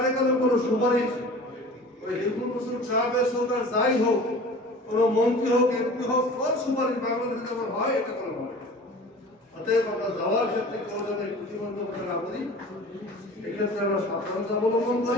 কোনো সুপারিশ ওই হিন্দু মুসলিম সাহাবের সরকার যাই হোক, কোনো মন্ত্রী হোক, এমপি হোক, সব সুপারিশ বাংলাদেশে যেমন হয় এটা কোনো হয়। অতএব আমরা যাওয়ার ক্ষেত্রে কেউ যেন প্রতিবন্ধকতা না করি, এক্ষেত্রে আমরা সাবধানতা অবলম্বন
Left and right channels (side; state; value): both; normal; correlation 0.41